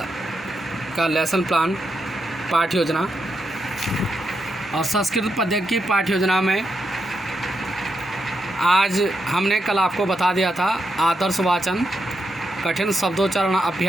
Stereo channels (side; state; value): both; normal; correlation 0.83